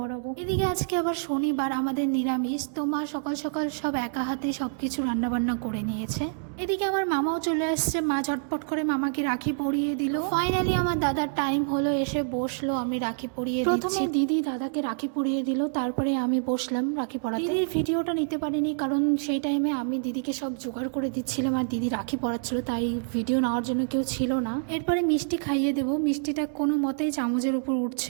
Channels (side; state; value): left; silent; digital silence